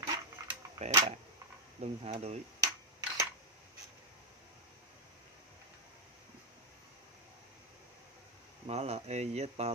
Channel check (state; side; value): normal; both; correlation 0.02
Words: kẻ bạc, lưng hạ đuổi. Mã là